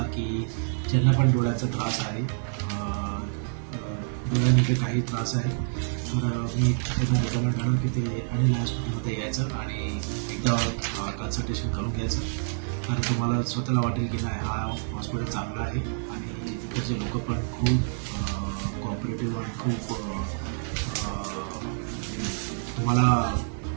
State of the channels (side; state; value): left; silent; digital silence